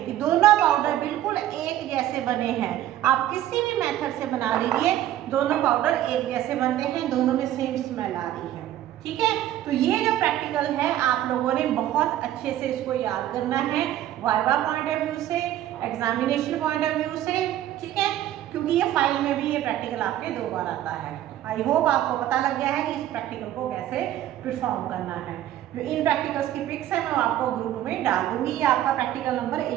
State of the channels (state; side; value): quieter; left; 12.7 dB